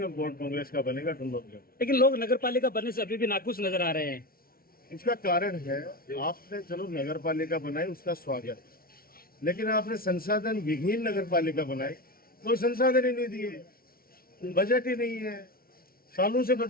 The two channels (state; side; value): late; right; 0.43 ms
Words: और बोर्ड कांग्रेस का बनेगा टुल्लू। लेकिन लोग नगर पालिका बनने से अभी भी नाखुश नजर आ रहे हैं। इसका कारण है, आपने चलो नगर पालिका बनाई, उसका स्वागत, लेकिन आपने संसाधन विहीन नगर पालिका बनाई, कोई संसाधन ही नहीं दिए, बजट ही नहीं है, सालों से